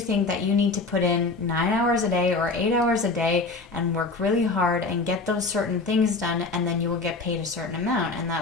that you need to put in 9 hours a day or 8 hours a day and work really hard and get those certain things done, and then you will get paid a certain amount. And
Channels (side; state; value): right; quieter; 3.6 dB